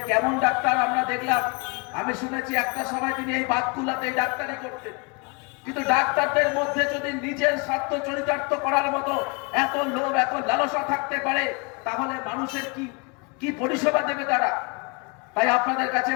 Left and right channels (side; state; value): right; quieter; 31.6 dB